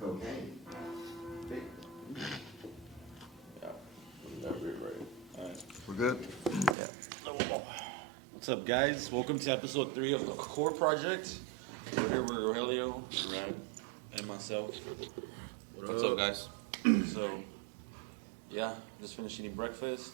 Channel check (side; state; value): left; drops out; at 6.8 s